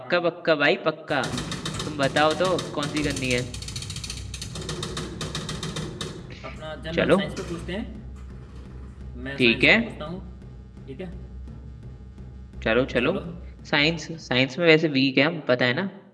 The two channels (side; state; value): both; identical; correlation 1.00